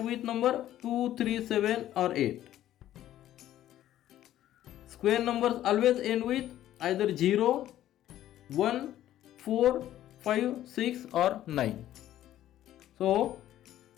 with number 2, 3, 7 or 8. Square numbers always end with either 0, 1, 4, 5, 6 or 9. So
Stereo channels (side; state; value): right; quieter; 12.8 dB